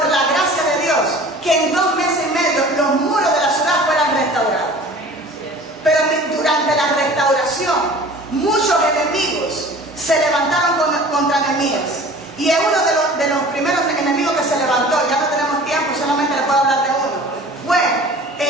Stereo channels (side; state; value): both; normal; correlation 0.44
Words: la gracia de Dios, que en 2 meses y medio los muros de la ciudad fueran restaurados. Pero durante la restauración, muchos enemigos se levantaron contra Nehemías. Y es uno de los primeros enemigos que se levantó. Ya no tenemos tiempo, solamente le puedo hablar de uno. Fue